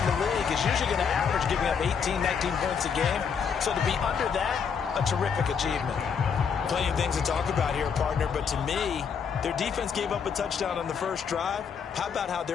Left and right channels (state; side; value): quieter; right; 6.6 dB